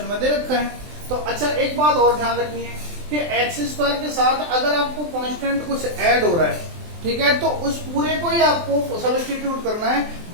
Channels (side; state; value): left; late; 23 ms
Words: में दे रखा है। तो अच्छा एक बात और ध्यान रखनी है कि एक्स स्क्वायर के साथ अगर आपको कांस्टेंट कुछ ऐड हो रहा है, ठीक है, तो उस पूरे को ही आपको सब्स्टिट्यूट करना है,